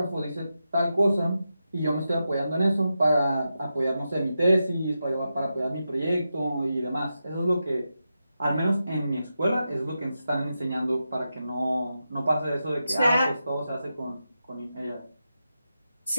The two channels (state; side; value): inverted; both; correlation -0.89